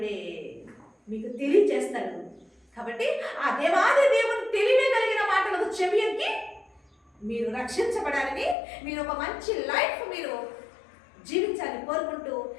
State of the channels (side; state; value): right; drops out; at 8.6 s